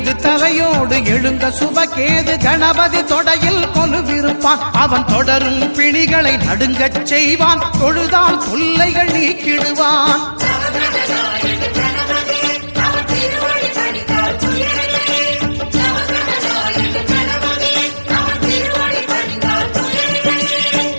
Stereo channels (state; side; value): inverted; both; correlation -1.00